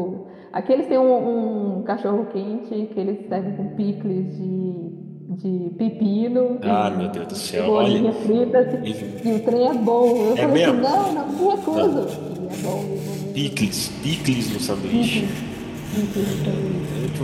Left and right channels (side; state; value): both; identical; correlation 1.00